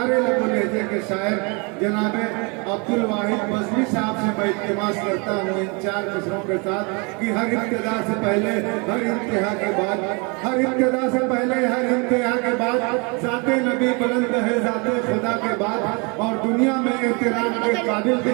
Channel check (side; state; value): left; quieter; 31.4 dB